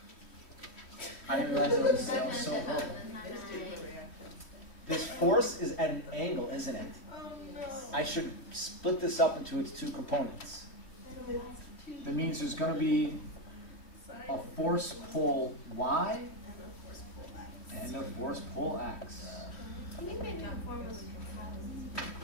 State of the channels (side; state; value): right; late; 3.1 ms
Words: I didn't realize it was so broken. It's doing the reaction. This force is at an angle, isn't it? Oh, no. I should split this up into its two components. That means there's going to be a force pole y and a force pole x. I think my new form was